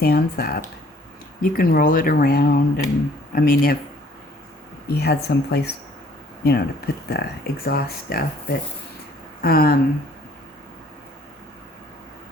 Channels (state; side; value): normal; both; correlation 0.58